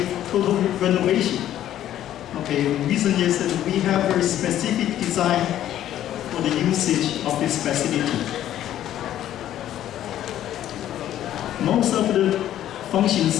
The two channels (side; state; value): right; quieter; 12.0 dB